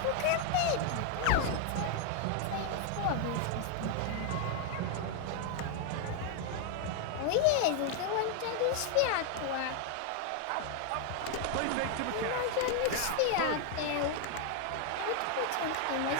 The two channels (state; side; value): different; both; correlation 0.00